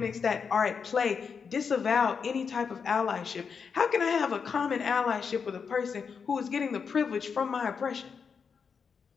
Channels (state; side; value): quieter; right; 6.0 dB